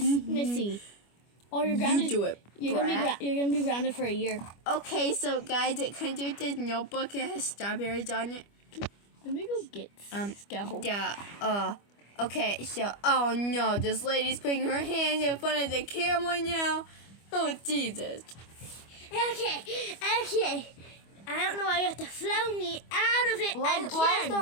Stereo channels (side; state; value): right; late; 25 ms